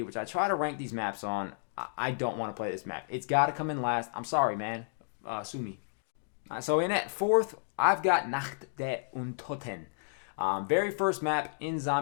which I try to rank these maps on, I don't want to play this map. It's got to come in last. I'm sorry, man. Sue me. So in at 4th, I've got Nacht der Untoten. Very first map in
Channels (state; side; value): silent; right; digital silence